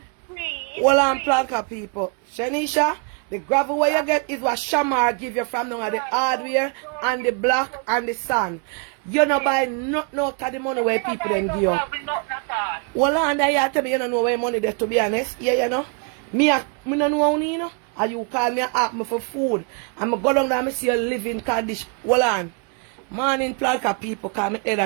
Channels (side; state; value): left; quieter; 37.2 dB